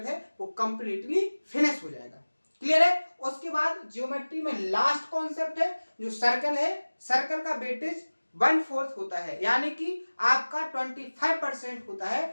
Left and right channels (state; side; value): inverted; both; correlation -1.00